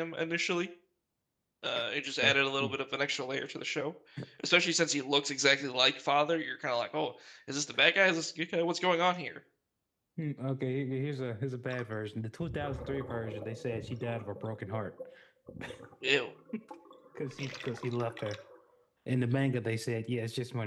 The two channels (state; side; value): identical; both; correlation 1.00